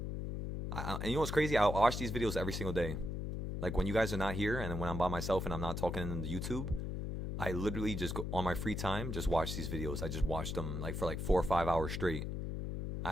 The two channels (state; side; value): noise; left; hum, 3 dB below the sound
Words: And you know what's crazy? I watch these videos every single day. Like when you guys are not here and when I'm by myself and I'm not talking in the YouTube, I literally just go on my free time, just watch these videos. I just watch them like for like 4 or 5 hours straight. I